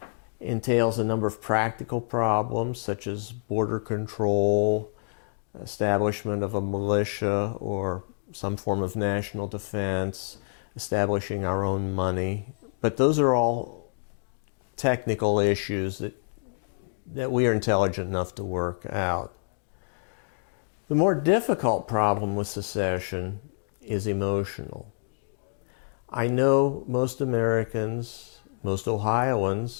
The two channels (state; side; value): silent; right; digital silence